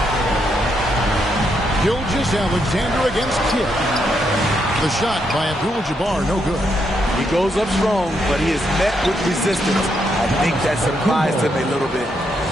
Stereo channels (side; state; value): both; normal; correlation 0.78